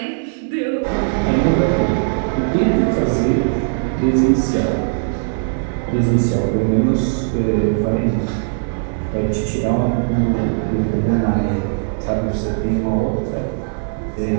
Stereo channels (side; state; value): left; silent; 58 dB below the other